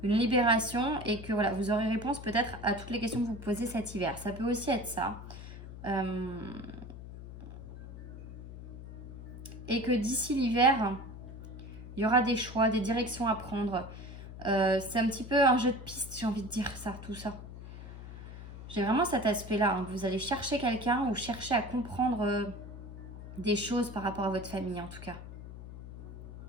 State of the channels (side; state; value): left; noise; hum, 12 dB below the sound